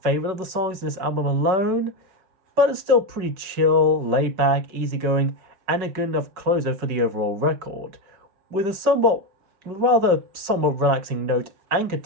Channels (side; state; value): left; late; 5.3 ms